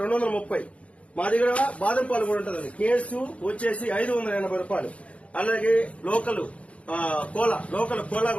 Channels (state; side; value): late; right; 0.063 ms